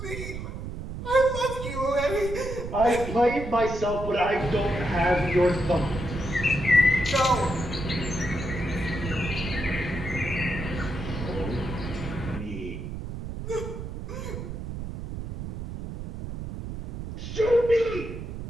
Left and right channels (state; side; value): noise; right; rumble, 7 dB below the sound